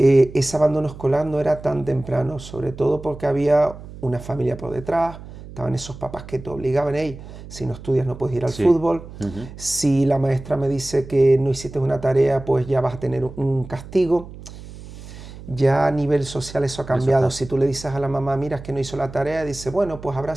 abandono escolar no era tan temprano, sobre todo porque había una familia por detrás, estaban esos papás que te obligaban, hey, si no estudias no puedes ir al fútbol, si la maestra me dice que no hiciste una tarea, pues ya vas a tener un castigo. Ya a nivel social eso ha cambiado. Si tú le dices a la mamá, mira, es que no hizo la tarea, dice, bueno, pues habrá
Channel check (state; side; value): noise; right; hum, 15 dB below the sound